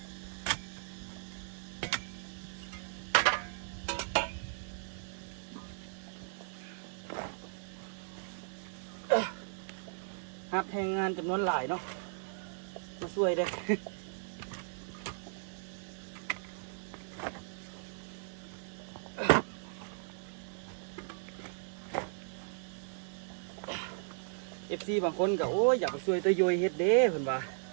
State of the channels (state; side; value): silent; left; 53 dB below the other